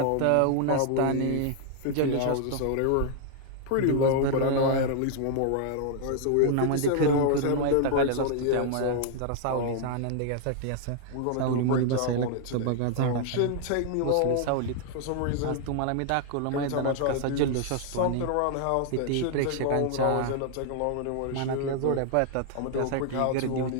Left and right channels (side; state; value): both; different; correlation 0.00